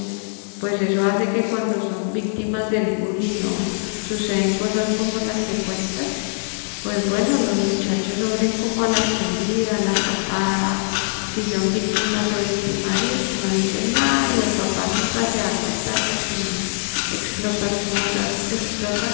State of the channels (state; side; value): silent; right; digital silence